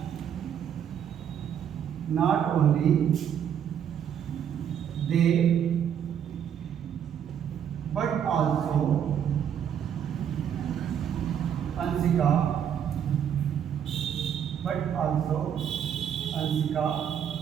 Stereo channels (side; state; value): left; quieter; 8.8 dB